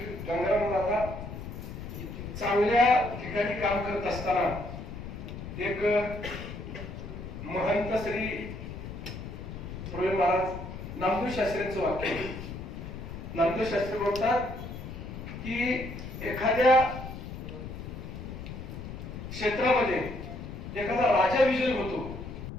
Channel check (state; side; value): noise; left; rumble, 9 dB below the sound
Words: गंगाराम दादा चांगल्या ठिकाणी काम करत असताना एक महंत श्री प्रवीण महाराज नामदेव शास्त्रींचं वाक्य, नामदेव शास्त्री बोलतात की एखाद्या क्षेत्रामध्ये एखादा राजा विजयी होतो.